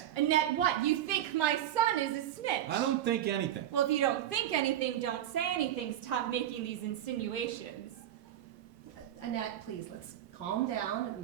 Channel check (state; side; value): quieter; left; 11.8 dB